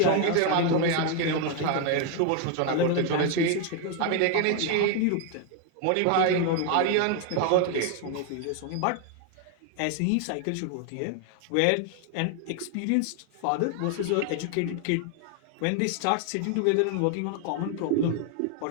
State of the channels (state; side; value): different; both; correlation 0.01